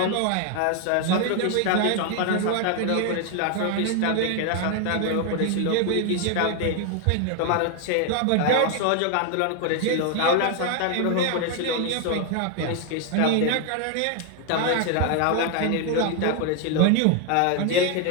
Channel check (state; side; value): different; both; correlation 0.01